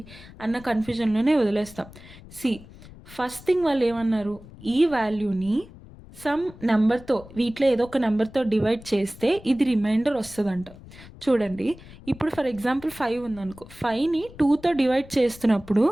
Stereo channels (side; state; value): left; noise; rumble, 19 dB below the sound